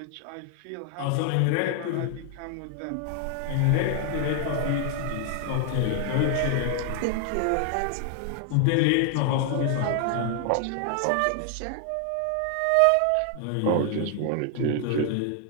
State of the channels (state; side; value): different; both; correlation 0.00